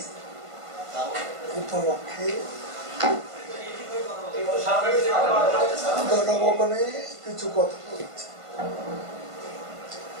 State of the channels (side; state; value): left; late; 1.5 ms